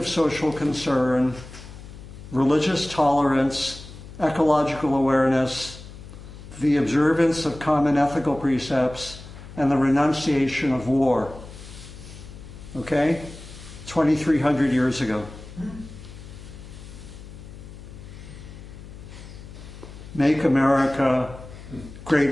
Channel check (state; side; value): noise; left; hum, 15 dB below the sound